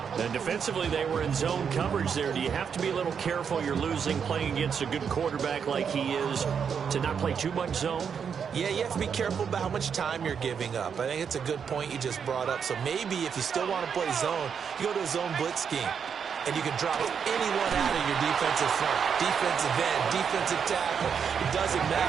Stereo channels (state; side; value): quieter; left; 7.0 dB